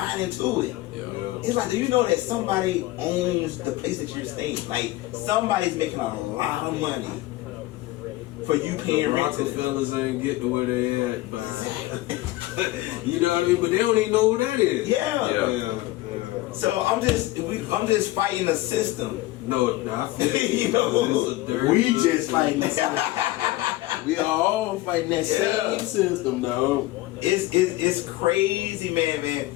into it. Yeah. It's like, do you know that somebody owns the place that you're staying? Like somebody's making a lot of money for you paying rent to them. Rockefellers ain't get to where they at, but you know what I mean. But they don't even know who that is. Yeah. So I'm just fighting a system. No, I feel You know, it's a dirty We little just fighting the system. We are all fighting that same system, though. It's crazy, man.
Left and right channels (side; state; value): right; quieter; 17.8 dB